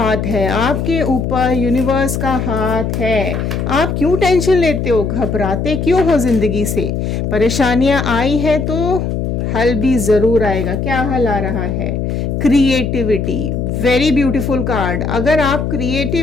है, आपके ऊपर यूनिवर्स का हाथ है। आप क्यों टेंशन लेते हो, घबराते क्यों हो जिंदगी से? परेशानियां आई है तो हल भी जरूर आएगा। क्या हल आ रहा है? क्रिएटिविटी। Very beautiful card. अगर आप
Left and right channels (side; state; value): left; noise; hum, 2 dB below the sound